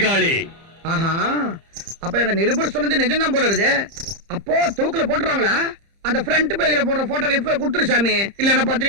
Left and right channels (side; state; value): left; late; 30 ms